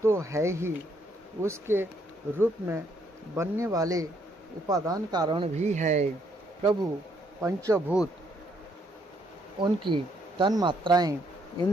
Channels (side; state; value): both; normal; correlation 0.71